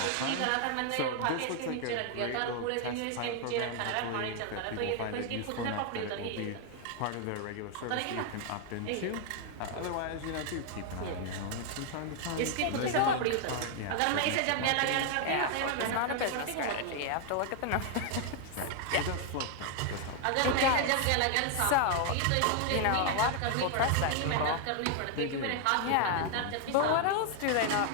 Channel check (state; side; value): different; both; correlation 0.00